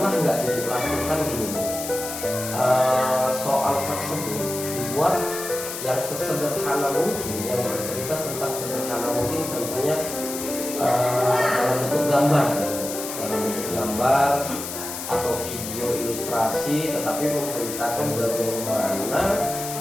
nggak Ibu lakukan gini Bu? Soal tersebut dibuat yang sesederhana mungkin, yang bercerita tentang sederhana mungkin, contohnya dalam bentuk gambar, dalam bentuk gambar atau video ilustrasi, tetapi menceritakan bagaimana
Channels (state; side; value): noise; left; hiss, 7 dB below the sound